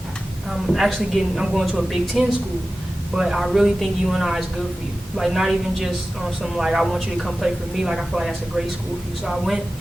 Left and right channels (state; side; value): normal; both; correlation 0.95